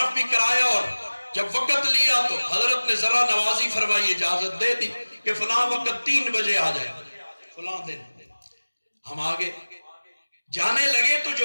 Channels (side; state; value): both; inverted; correlation -1.00